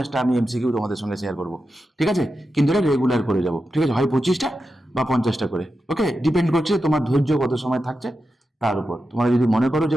আমি MCQ তোমাদের সঙ্গে শেয়ার করব। ঠিক আছে? কিন্তু এটা রেগুলার করে যাব। ঠিক আছে? হয় 25টা বা 50টা করে। ওকে? ডিপেন্ড করছে তোমার ধৈর্য কত সময় থাকছে তার উপর। তোমরা যদি মনে করো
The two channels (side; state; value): both; normal; correlation 0.90